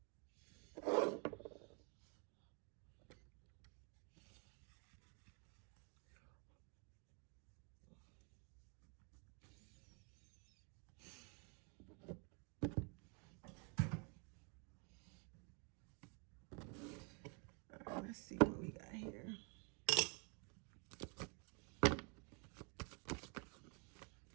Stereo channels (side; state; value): left; quieter; 35.8 dB